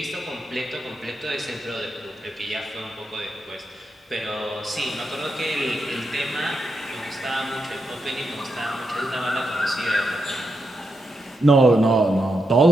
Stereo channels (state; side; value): normal; both; correlation 0.84